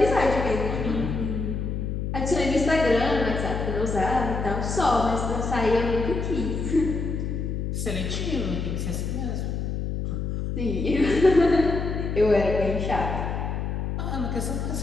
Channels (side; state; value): left; noise; hum, 2 dB below the sound